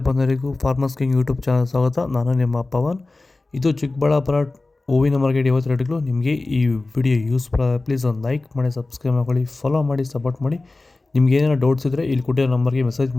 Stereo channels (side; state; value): right; quieter; 3.2 dB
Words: ಬಂಧುಗಳಿಗೂ ಫಾರ್ಮರ್ಸ್ ಕಿಂಗ್ ಯೂಟ್ಯೂಬ್ ಚಾನಲ್ ಸ್ವಾಗತ. ನಾನು ನಿಮ್ಮ ಪವನ್. ಇದು ಚಿಕ್ಕಬಳ್ಳಾಪುರ ಹೂವಿನ ಮಾರ್ಕೆಟ್ 50 ರೇಟ್ಗಳು. ನಿಮಗೆ ಈ ವಿಡಿಯೋ ಯೂಸ್ ಪ್ಲೀಸ್ ಒಂದು ಲೈಕ್ ಮಾಡಿ, ಸಬ್ಸ್ಕ್ರೈಬ್ ಮಾಡ್ಕೊಳ್ಳಿ, ಫಾಲೋ ಮಾಡಿ, ಸಪೋರ್ಟ್ ಮಾಡಿ. ನಿಮ್ಗೆ ಏನಾರು ಡೌಟ್ಸ್ ಇದ್ದರೆ ಇಲ್ಲಿ ಕೊಟ್ಟಿರೋ ನಂಬರ್ಗೆ ಮೆಸೇಜ್